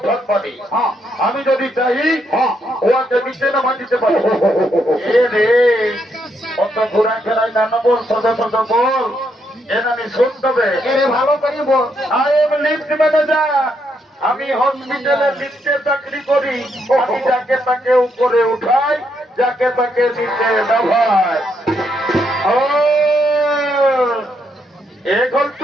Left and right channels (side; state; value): both; normal; correlation 0.77